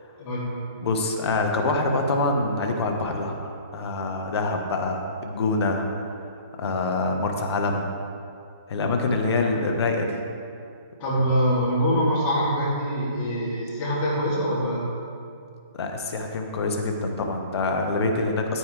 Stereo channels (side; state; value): both; inverted; correlation -0.47